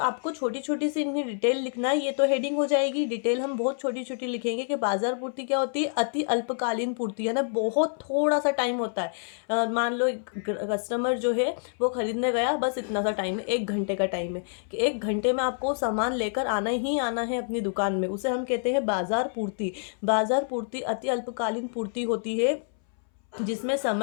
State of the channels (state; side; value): silent; right; 60 dB below the other